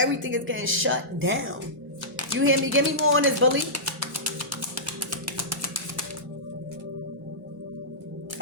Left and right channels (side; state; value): both; normal; correlation -0.17